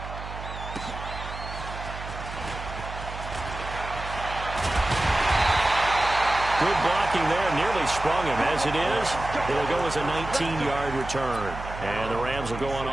Good blocking there, nearly sprung him. As it is, it'll go as a 19-yard return. And the Rams will go on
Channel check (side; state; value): right; noise; hum, 10 dB below the sound